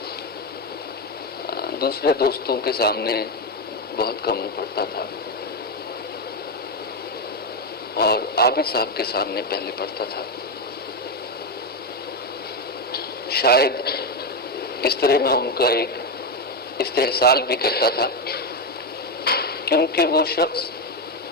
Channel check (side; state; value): both; normal; correlation 0.09